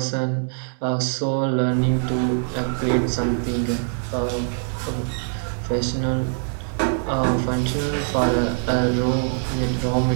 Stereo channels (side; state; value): left; silent; 63 dB below the other